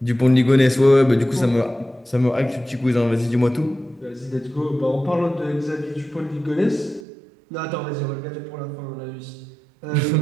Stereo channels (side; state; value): left; drops out; at 7.0 s